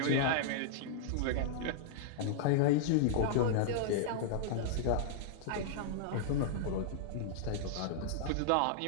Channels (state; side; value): different; both; correlation -0.02